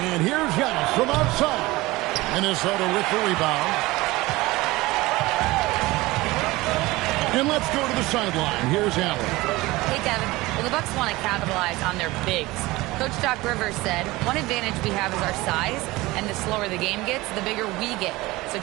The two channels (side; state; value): left; quieter; 20.2 dB